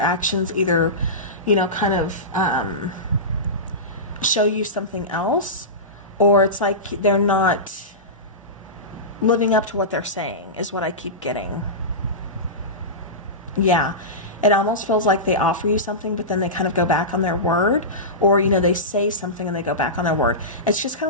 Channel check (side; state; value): both; normal; correlation -0.18